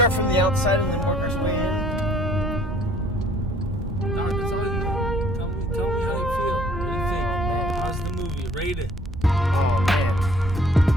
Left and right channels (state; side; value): normal; both; correlation 0.57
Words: from the outside and then work our way in? Dog, that's all you know. Tell me how you feel. What do you think? How's the movie? Rate it. Oh man.